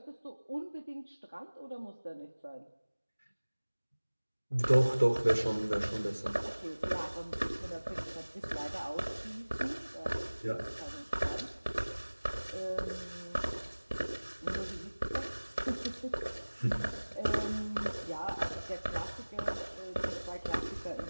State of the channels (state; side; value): inverted; both; correlation -1.00